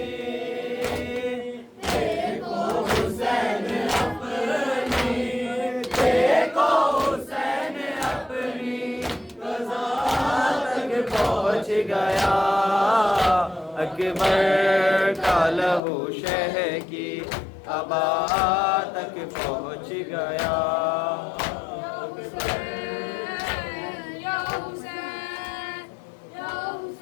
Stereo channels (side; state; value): right; drops out; at 15.8 s